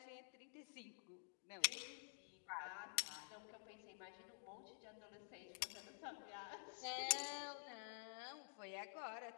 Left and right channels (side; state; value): right; silent; digital silence